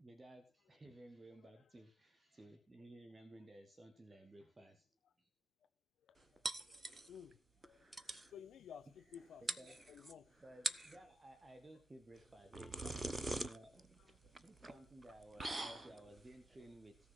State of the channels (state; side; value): normal; both; correlation 0.86